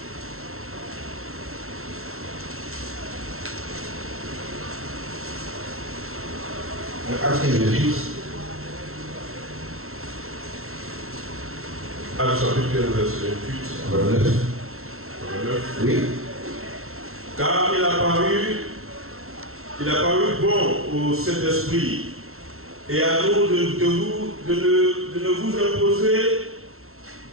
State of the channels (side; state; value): left; late; 0.62 ms